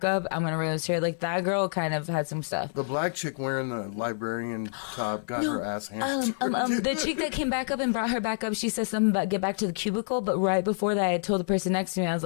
up. I'm gonna roast her. Like that girl kind of had some stuff. The black chick wearing the librarian top got her ass handed. The chick that came back up and brought her back up, she said something about get back to the cubicle. But right before that, I told the person next to me, I was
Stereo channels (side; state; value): right; silent; digital silence